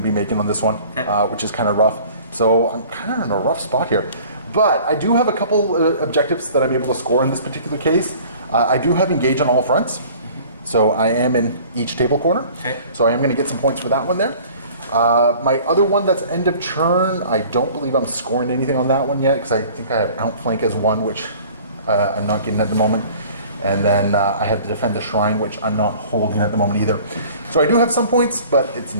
to be making on this one, which is kind of rough. So I'm kind of in a rough spot here. But I do have a couple objectives that I'm able to score in this particular case. I do have engage on all fronts. So I am in each table corner. Okay. So I am going to get some points for that one there. My other one that's end of turn, I don't believe I'm scoring anything on that one yet because I think I have outflank as one, which I'm not getting at the moment. And then I have to defend the shrine, which I'm not holding at the moment either. So I do have some points, but it's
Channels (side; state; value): both; inverted; correlation -0.48